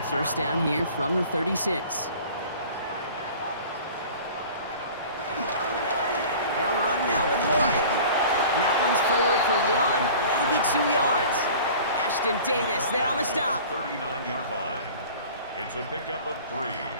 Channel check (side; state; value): both; inverted; correlation -0.43